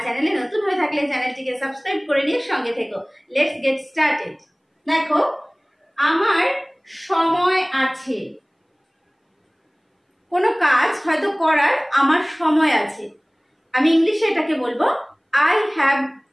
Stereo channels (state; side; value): identical; both; correlation 1.00